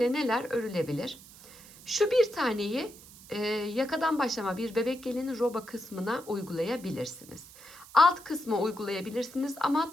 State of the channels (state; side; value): noise; right; hiss, 20 dB below the sound